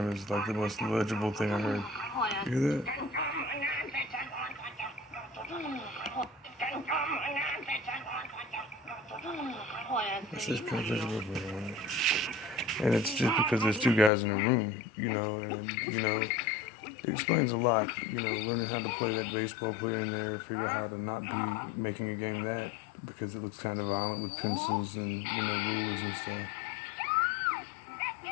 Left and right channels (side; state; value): right; drops out; at 14.1 s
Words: is like the most legible thing I heard. You hear that? It says can I touch your butt program. And it's just because there's two guys in a room, and, it explains a lot, learning how to play that baseball player in there, figure out how to not be making a game that, because it looks kind of violent with pencils and, rulers and stuff.